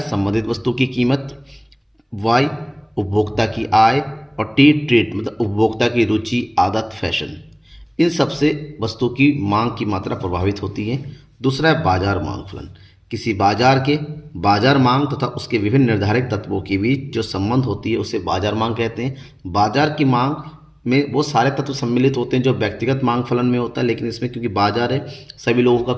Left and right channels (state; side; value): identical; both; correlation 1.00